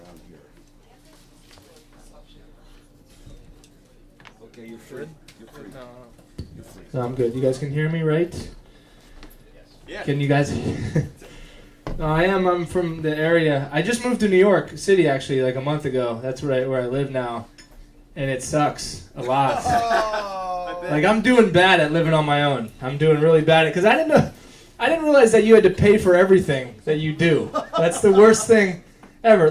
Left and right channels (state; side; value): identical; both; correlation 1.00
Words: here. Okay, you're free. You're free. You're free. So I'm good. You guys can hear me, right? Yeah. Can you guys? No, I am. I'm from the area. I just moved to New York City actually, like a month ago. That's where I live now, and it sucks a lot. Like I'm doing bad at living on my own. I'm doing really bad at because I didn't realize that you had to pay for everything that you do. That's the worst thing ever.